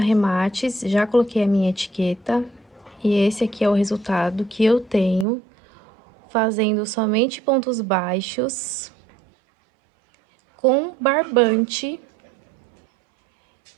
já coloquei a minha etiqueta. E esse aqui é o resultado que eu tenho, fazendo somente pontos baixos, com barbante.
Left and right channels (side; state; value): left; drops out; at 5.2 s